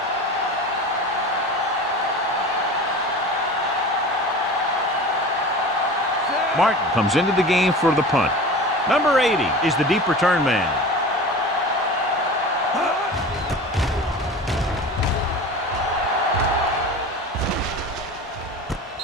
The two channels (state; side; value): normal; both; correlation 0.35